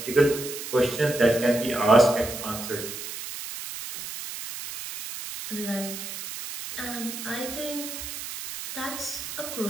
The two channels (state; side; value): noise; right; hiss, 8 dB below the sound